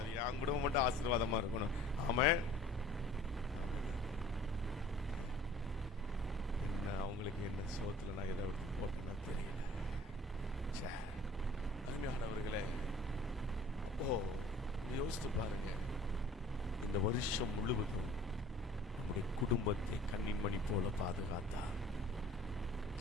என் குடும்பம் மட்டும் ஆசீர்வாதமா இருக்கணும். ஆமென். என்ன அவங்களுக்கு என்ன சோத்துல நான் எதை எடுத்து போட்டேன்னா தெரியல. அருமையானவர்களே, யோசித்து பாருங்க, இந்த வருஷம் முழுவதும் நம்முடைய குடும்பத்தை கண்ணின் மணி போல பாதுகாத்தார்.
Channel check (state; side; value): normal; both; correlation 0.49